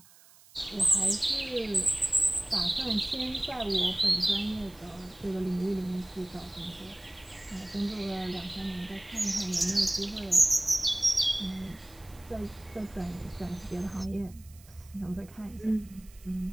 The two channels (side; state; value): right; noise; hiss, 24 dB below the sound